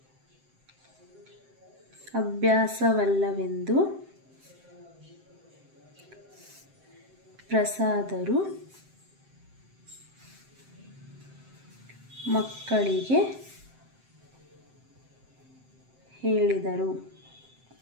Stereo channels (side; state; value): left; late; 7.7 ms